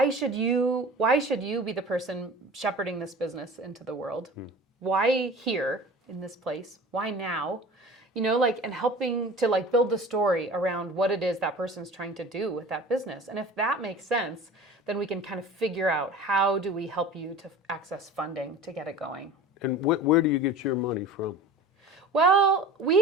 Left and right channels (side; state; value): both; normal; correlation 0.40